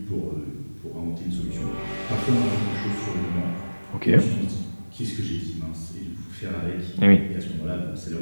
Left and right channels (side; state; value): both; inverted; correlation -1.00